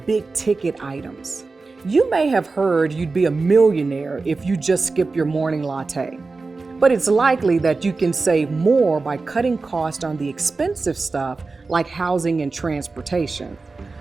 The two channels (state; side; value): quieter; left; 3.9 dB